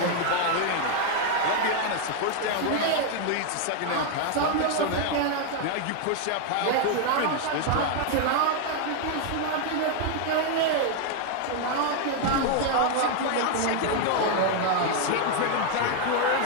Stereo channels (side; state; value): both; different; correlation 0.01